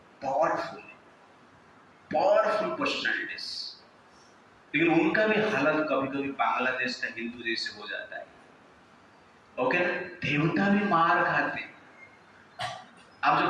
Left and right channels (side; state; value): both; identical; correlation 1.00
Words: पावरफुल पर्सनैलिटीज, लेकिन उनका भी हालत कभी कभी बांग्लादेश का हिंदू जैसे हो जाता है। ओके, देवता भी मार खाते हैं। आप जो